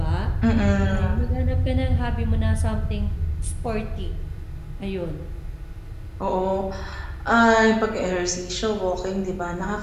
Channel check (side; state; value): both; identical; correlation 1.00